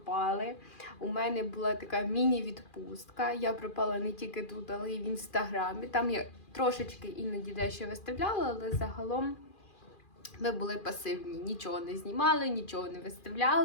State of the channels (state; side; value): late; right; 2.4 ms